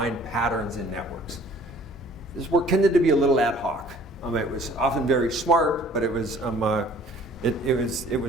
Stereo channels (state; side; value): normal; both; correlation 0.54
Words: patterns in networks. This work tended to be a little ad hoc. It was often very smart, but it was